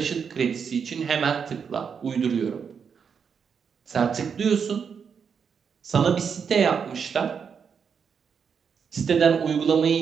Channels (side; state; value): left; quieter; 6.6 dB